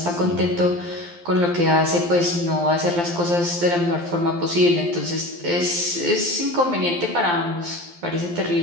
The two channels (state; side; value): late; left; 12 ms